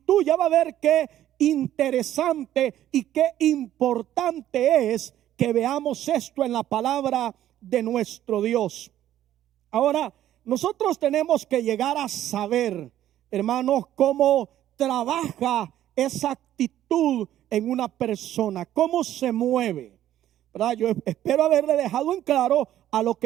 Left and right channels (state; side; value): quieter; left; 12.3 dB